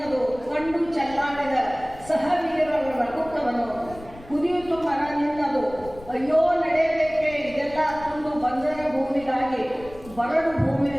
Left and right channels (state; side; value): noise; left; rumble, 19 dB below the sound